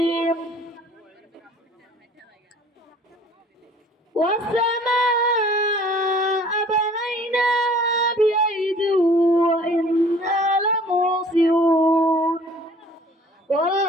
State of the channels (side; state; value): both; normal; correlation 0.52